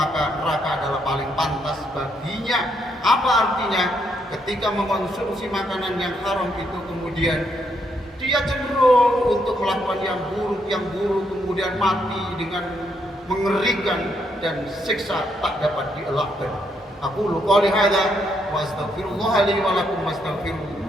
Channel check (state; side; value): normal; both; correlation 0.75